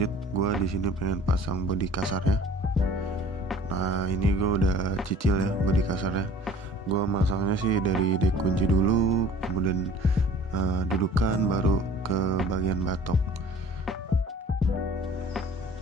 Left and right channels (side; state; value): both; normal; correlation 0.48